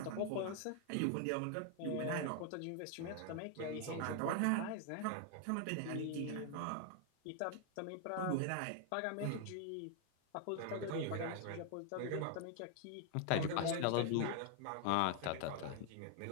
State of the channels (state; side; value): different; both; correlation 0.00